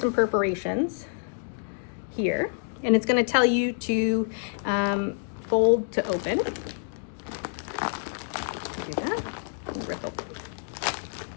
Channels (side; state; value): right; silent; digital silence